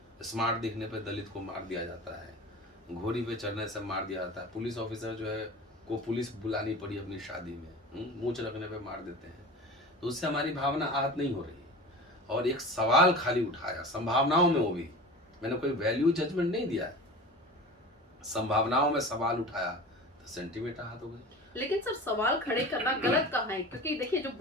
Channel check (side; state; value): both; normal; correlation 0.34